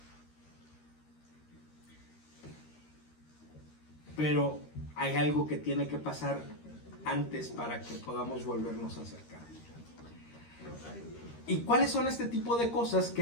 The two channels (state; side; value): late; right; 13 ms